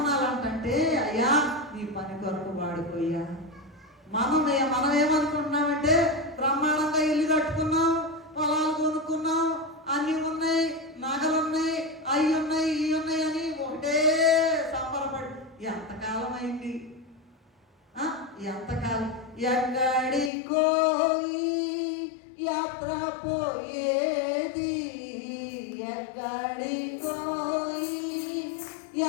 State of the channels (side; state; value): right; drops out; at 20.3 s